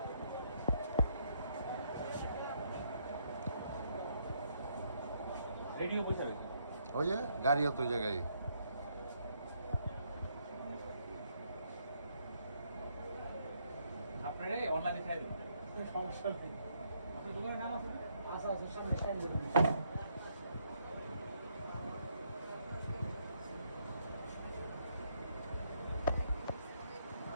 রেডিও বসে রয়েছে। ওই যে গাড়িও তো ওই জায়গায়। আপনারা অনলাইনে খাই দেবেন। সমস্যা নেই। আপনার দোকানের নাম আছে না? আচ্ছা আচ্ছা, সামনে সামনে দেবেন।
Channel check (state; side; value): inverted; both; correlation -0.73